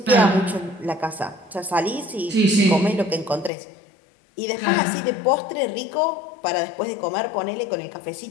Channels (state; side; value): drops out; right; at 3.5 s